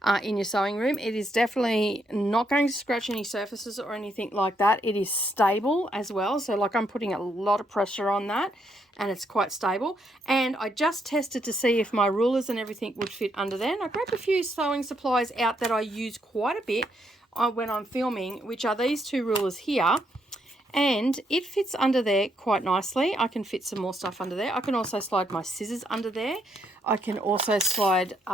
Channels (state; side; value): normal; both; correlation 0.75